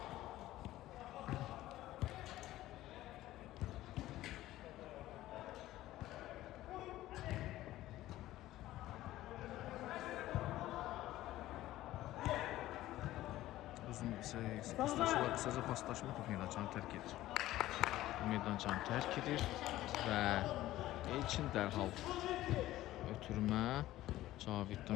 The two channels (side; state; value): right; quieter; 15.3 dB